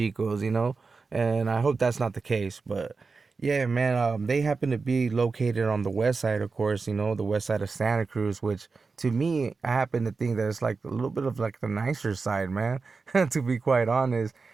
And I hope that's not the case. But yeah, man, they happen to be located on the west side, of course, the west side of Santa Cruz, which to me, I happen to think that it's like a little bit of like the nicer side, man, to be quite honest.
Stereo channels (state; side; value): quieter; left; 4.4 dB